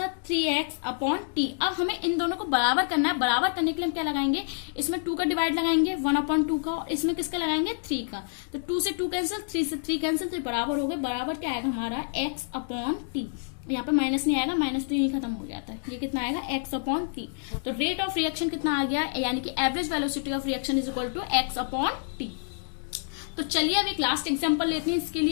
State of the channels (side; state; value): right; silent; digital silence